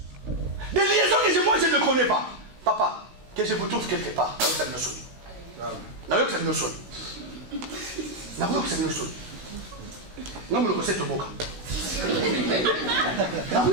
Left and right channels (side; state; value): left; late; 16 ms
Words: Des liaisons que moi, je ne connais pas. Papa, que je vous trouve quelque part.